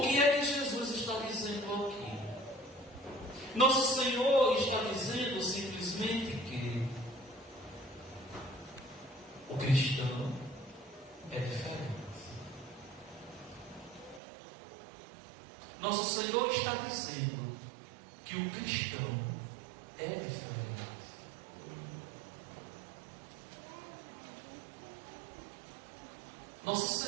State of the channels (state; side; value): drops out; left; at 14.2 s